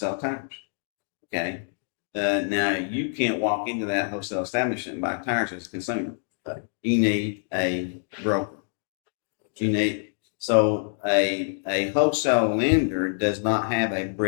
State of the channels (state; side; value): silent; right; digital silence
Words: tires. Okay. Now you can't walk into that wholesale establishment and buy tires as a consumer. Okay. You need a broker. A wholesale lender does not have a